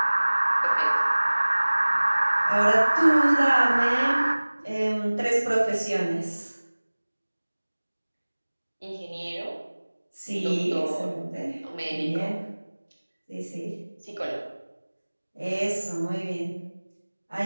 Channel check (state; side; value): inverted; both; correlation -1.00